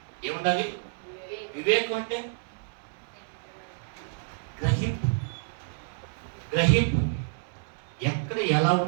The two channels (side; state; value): left; silent; 59 dB below the other